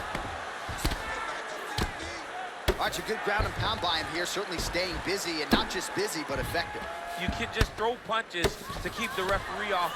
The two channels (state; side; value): identical; both; correlation 1.00